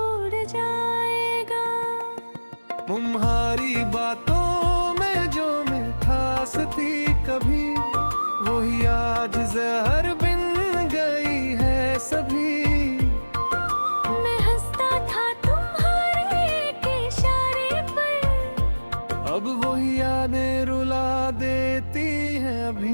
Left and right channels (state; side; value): inverted; both; correlation -1.00